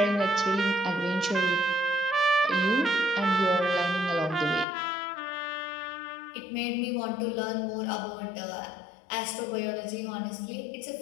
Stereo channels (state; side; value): drops out; right; at 4.7 s